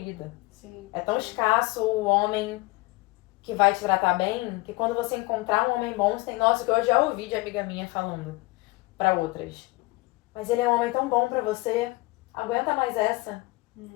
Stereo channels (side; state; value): right; quieter; 22.7 dB